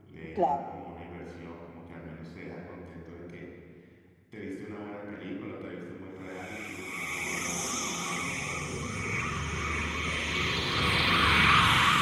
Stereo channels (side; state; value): both; identical; correlation 1.00